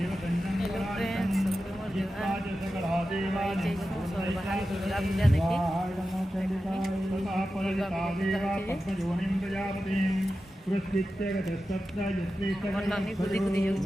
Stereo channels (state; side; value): normal; both; correlation 0.92